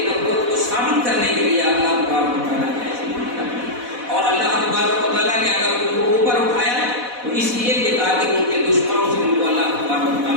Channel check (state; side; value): late; left; 4.1 ms